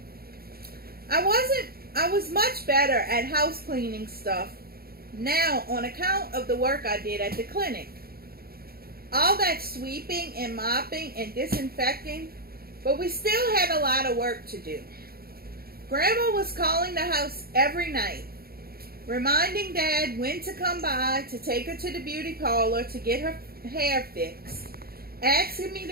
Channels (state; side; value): late; left; 0.44 ms